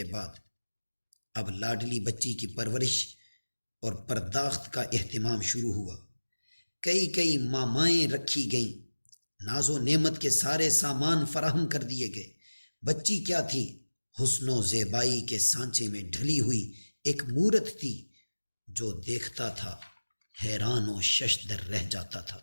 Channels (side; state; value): both; inverted; correlation -1.00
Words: بعد اب لاڈلی بچی کی پرورش اور پرداخت کا اہتمام شروع ہوا۔ کئی مامائیں رکھی گئیں، ناز و نعمت کے سارے سامان فراہم کر دیے گئے۔ بچی کیا تھی؟ حسن و زیبائی کے سانچے میں ڈھلی ہوئی ایک مورت تھی۔ جو دیکھتا تھا حیران و ششدر رہ جاتا تھا۔